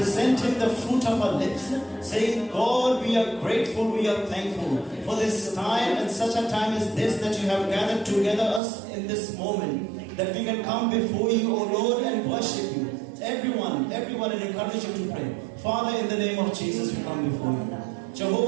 Him the fruit of our lips, saying, God, we are grateful, we are thankful for this time and such a time as this, that you have gathered together us in this moment, that we can come before you, O Lord, and worship you. Everyone, and encourage you to pray. Father, in the name of Jesus, we come before you.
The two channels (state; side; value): drops out; left; at 8.6 s